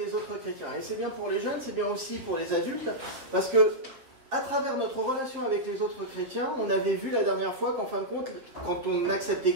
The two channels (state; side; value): late; left; 7.5 ms